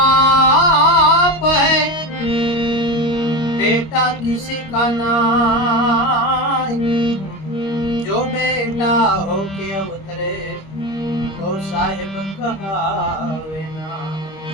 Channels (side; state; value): right; late; 25 ms